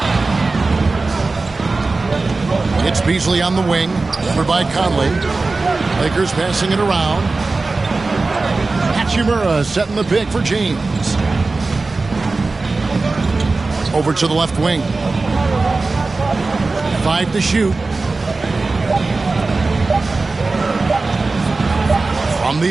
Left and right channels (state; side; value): quieter; left; 3.6 dB